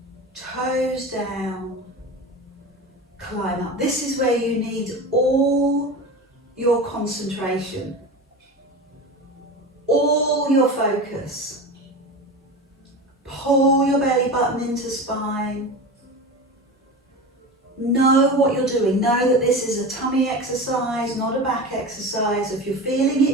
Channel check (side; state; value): both; normal; correlation 0.28